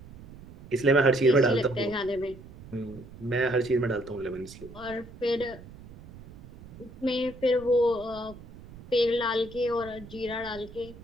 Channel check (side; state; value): right; noise; rumble, 18 dB below the sound